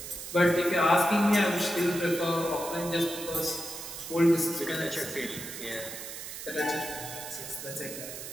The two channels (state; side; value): noise; right; hiss, 9 dB below the sound